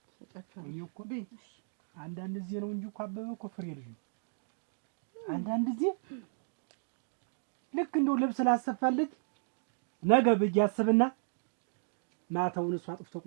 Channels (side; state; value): left; silent; digital silence